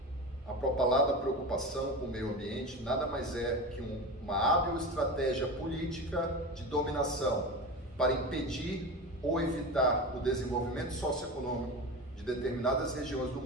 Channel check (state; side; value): normal; both; correlation 0.26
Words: A propalada preocupação com o meio ambiente nada mais é que uma hábil estratégia política de dominação para impedir ou evitar o desenvolvimento socioeconômico de determinadas regiões do